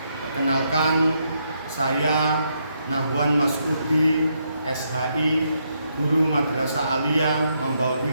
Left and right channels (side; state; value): both; inverted; correlation -0.77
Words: Perkenalkan, saya Nahwan Masudi, SHI, Guru Madrasah Aliyah Mambaul